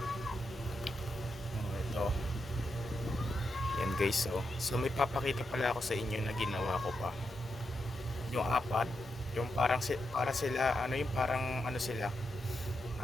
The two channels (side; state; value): both; normal; correlation 0.85